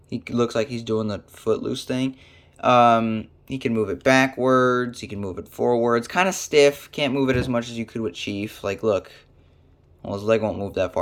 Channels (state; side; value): identical; both; correlation 1.00